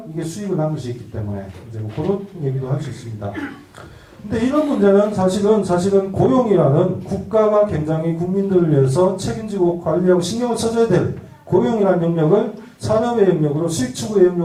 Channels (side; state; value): both; identical; correlation 1.00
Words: 이게 수익을 남길 수 있기 때문에 이제 뭐 그런 얘기도 할 수 있습니다. 근데 이런 문제는 사실은 고용이라는 국가가 굉장히 국민들을 위해서 책임지고 관리하고 신경을 써줘야 될 고용이라는 영역을 산업의 영역으로 수익 추구의